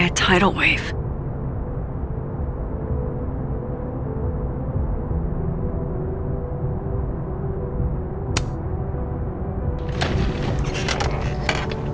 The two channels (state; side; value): identical; both; correlation 1.00